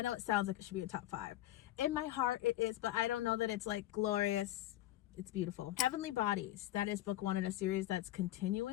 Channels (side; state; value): right; quieter; 14.3 dB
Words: know it sounds like it should be a top 5. In my heart it is, but I don't know that it's like glorious. It's beautiful. Heavenly Bodies, that is book 1 in a series that's